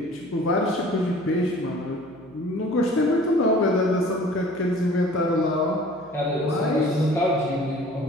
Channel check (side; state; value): right; noise; hum, 27 dB below the sound